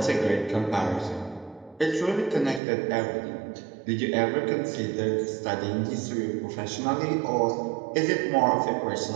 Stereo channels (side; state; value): left; drops out; at 2.6 s